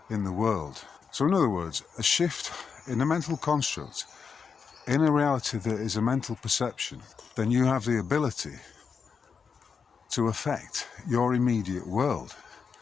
in the world. So in other words, a shift in a mental construct, in a reality that is a mental perception, then you have the ability to affect your immediate world,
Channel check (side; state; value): right; quieter; 5.9 dB